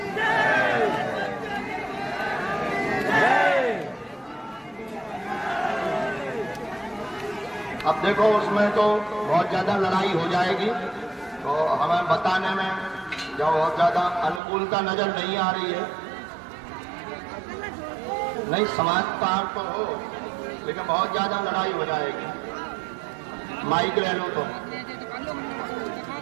अब देखो उसमें तो बहुत ज्यादा लड़ाई हो जाएगी, तो हमें बताने में जब बहुत ज्यादा अनुकूलता नजर नहीं आ रही है। नहीं समझदार तो हो, लेकिन बहुत ज्यादा लड़ाई हो जाएगी। माइक ले लो तो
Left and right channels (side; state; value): left; drops out; at 14.4 s